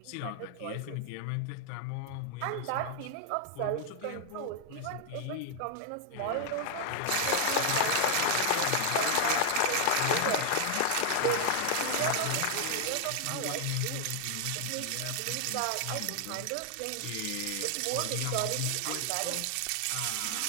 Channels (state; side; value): different; both; correlation 0.00